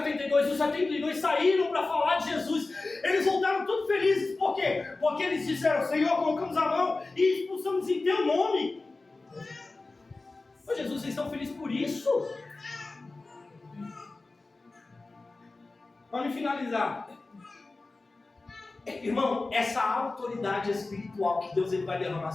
saíram para falar de Jesus. Eles voltaram todos felizes. Por quê? Porque eles disseram: Senhor, colocamos a mão e expulsamos em teu nome. Ô Jesus, vocês estão felizes por isso? Vamos finalizar. Irmão, essa autoridade espiritual que Deus ele vai derramar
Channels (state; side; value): quieter; right; 3.4 dB